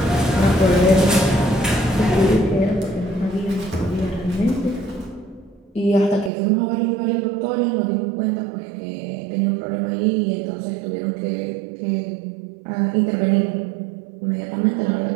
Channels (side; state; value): left; drops out; at 6.3 s